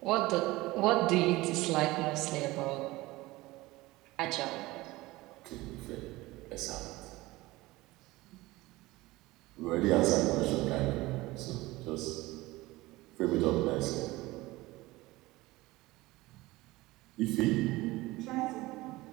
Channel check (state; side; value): quieter; left; 19.8 dB